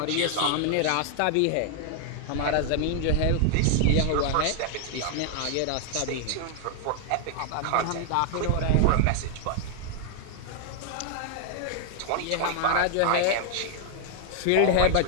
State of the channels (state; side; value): different; both; correlation 0.00